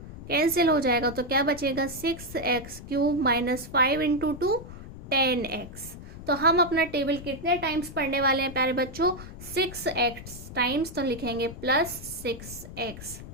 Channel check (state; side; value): noise; left; rumble, 13 dB below the sound